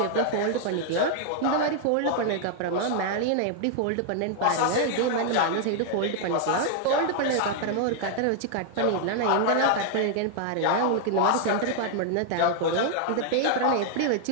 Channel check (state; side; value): different; both; correlation 0.00